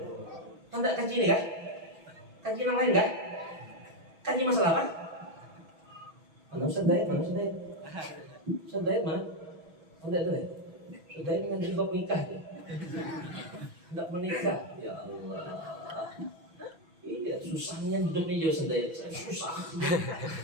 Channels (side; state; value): left; late; 6.1 ms